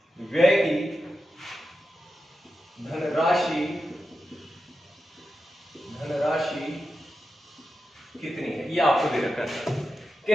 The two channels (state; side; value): normal; both; correlation 0.90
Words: व्यय की धनराशि कितनी है, ये आपको दे रखा है कि